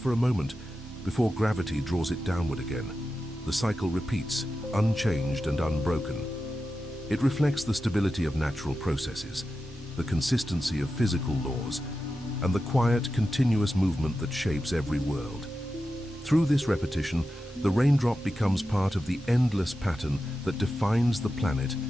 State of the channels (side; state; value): both; normal; correlation 0.91